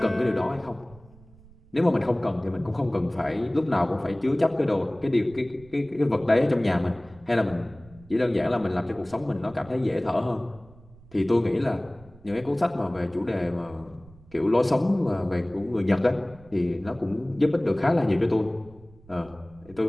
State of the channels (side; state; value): right; noise; rumble, 24 dB below the sound